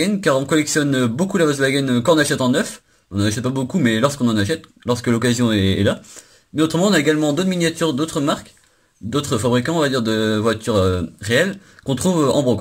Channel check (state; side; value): identical; both; correlation 1.00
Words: car on collectionne beaucoup la Volkswagen quand on achète en neuf. On n'en achète pas beaucoup, mais lorsqu'on en achète, lorsque l'occasion est là. Mais autrement, on a également d'autres miniatures, d'autres marques, d'autres fabricants, on va dire, de voitures réelles, qu'on trouve en